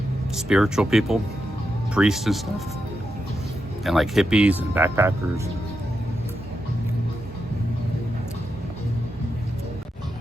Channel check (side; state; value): both; normal; correlation 0.86